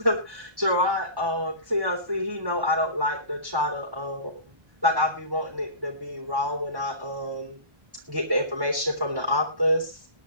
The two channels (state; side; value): late; left; 1.1 ms